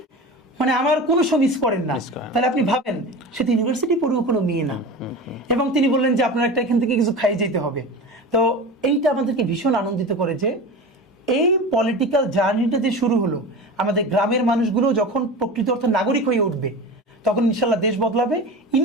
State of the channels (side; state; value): both; normal; correlation 0.31